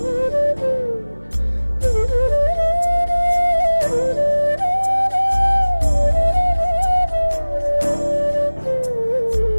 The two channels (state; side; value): inverted; both; correlation -1.00